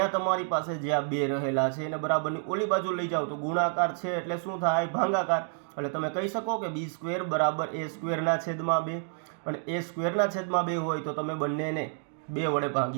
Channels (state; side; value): silent; left; digital silence